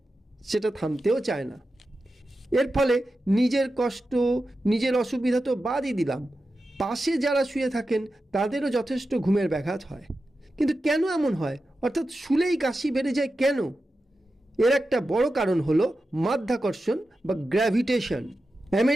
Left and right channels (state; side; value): normal; both; correlation 0.91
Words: সেটা থামতেও চায় না। এর ফলে নিজের কষ্ট, নিজের অসুবিধা তো বাদই দিলাম, পাশে যারা শুয়ে থাকেন তাদেরও যথেষ্ট ঘুমের ব্যাঘাত হয়। কিন্তু কেন এমন হয়, অর্থাৎ শুলেই কাশি বেড়ে যায় কেন? এর একটা বড় কারণ হলো মাধ্যাকর্ষণ বা গ্র্যাভিটেশন।